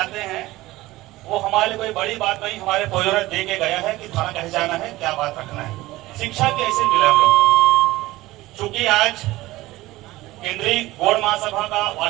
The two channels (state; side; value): quieter; left; 18.1 dB